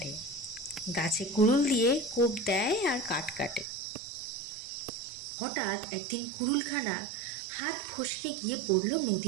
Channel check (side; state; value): left; drops out; at 3.7 s